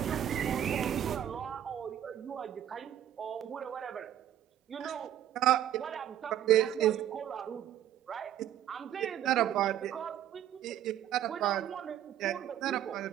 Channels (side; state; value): left; quieter; 11.2 dB